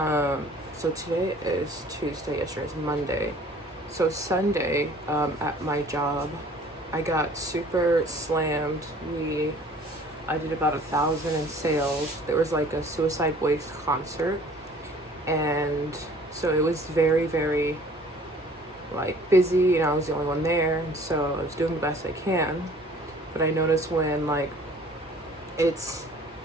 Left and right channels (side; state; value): both; normal; correlation 0.51